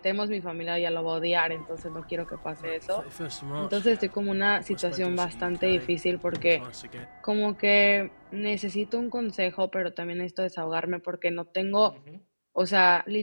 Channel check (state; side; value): inverted; both; correlation -1.00